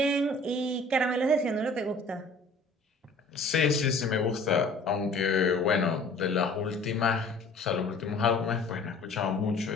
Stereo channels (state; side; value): quieter; right; 3.1 dB